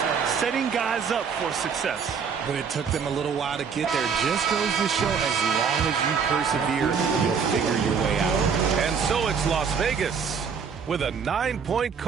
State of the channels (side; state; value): left; quieter; 6.3 dB